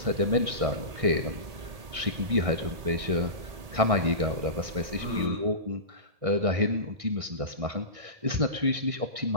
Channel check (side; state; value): left; late; 1.8 ms